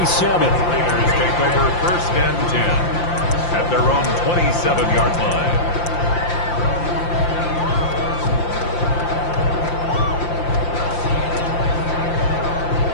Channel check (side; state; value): right; late; 5.8 ms